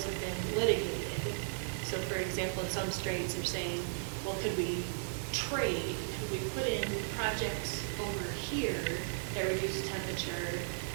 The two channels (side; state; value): left; silent; digital silence